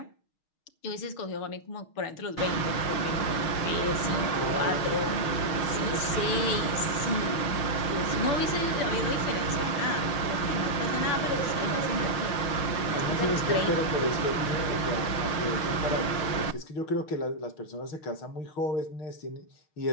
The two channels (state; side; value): late; right; 6.4 ms